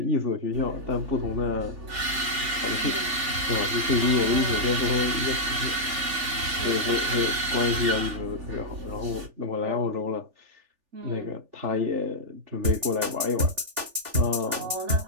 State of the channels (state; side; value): late; left; 3.4 ms